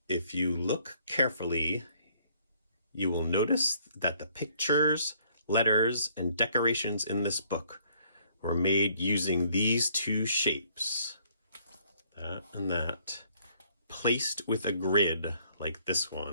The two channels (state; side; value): inverted; both; correlation -0.64